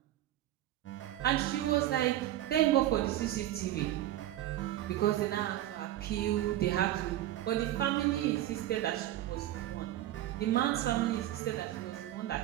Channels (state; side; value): quieter; left; 13.5 dB